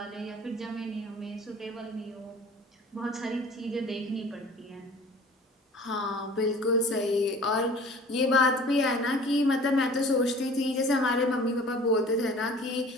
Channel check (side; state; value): both; normal; correlation 0.46